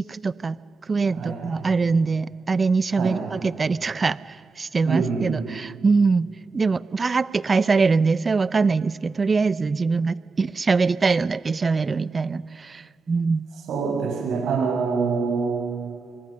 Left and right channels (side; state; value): left; quieter; 4.2 dB